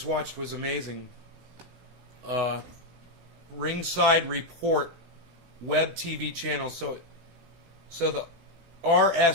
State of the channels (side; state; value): left; late; 18 ms